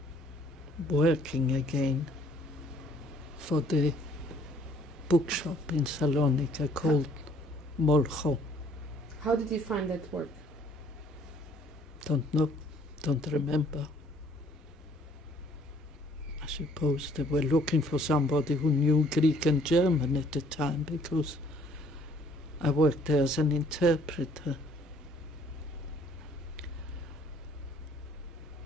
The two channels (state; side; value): normal; both; correlation 0.61